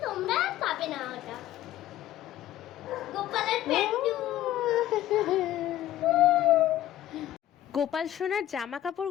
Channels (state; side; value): quieter; right; 13.2 dB